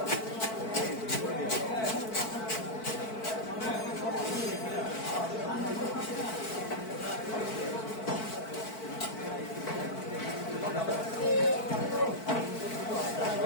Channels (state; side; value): late; right; 4.5 ms